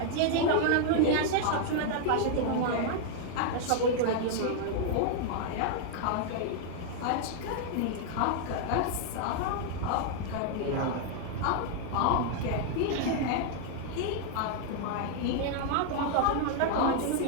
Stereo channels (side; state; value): both; different; correlation 0.00